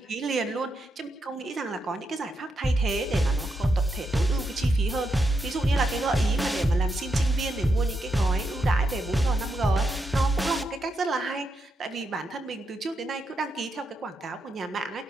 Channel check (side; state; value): both; normal; correlation 0.83